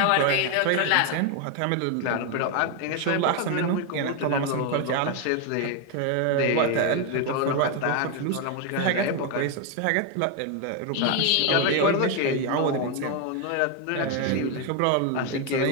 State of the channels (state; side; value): different; both; correlation 0.01